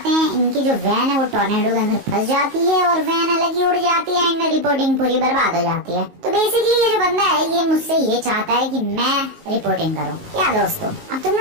हैं, इनकी जो वैन है वो टॉर्नेडो के अंदर फंस जाती है और वैन अलग ही उड़ जाती है एंड रिपोर्टिंग पूरी बर्बाद हो जाती है। तो बेसिकली ये जो बंदा है ये मुझसे ये चाहता है कि मैं रिपोर्टिंग करूं। क्या दोस्तों, अब तुम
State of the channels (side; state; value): left; late; 19 ms